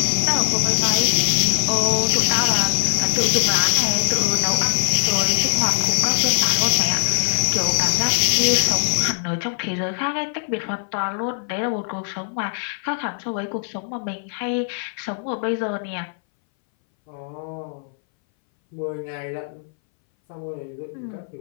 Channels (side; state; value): right; silent; 62 dB below the other